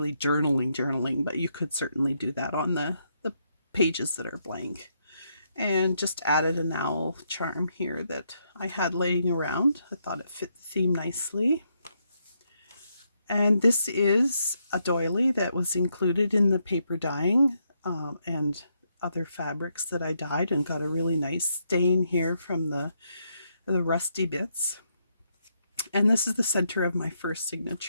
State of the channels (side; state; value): both; inverted; correlation -0.78